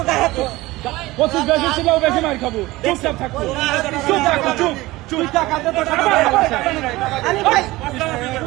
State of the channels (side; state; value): left; quieter; 19.4 dB